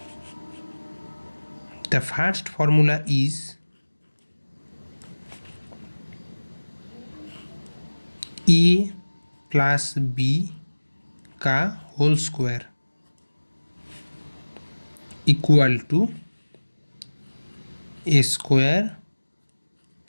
The first formula is A plus B का whole square equal to A square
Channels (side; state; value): both; inverted; correlation -1.00